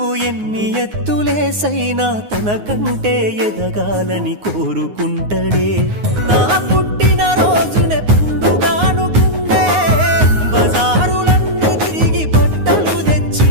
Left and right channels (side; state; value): left; late; 9.6 ms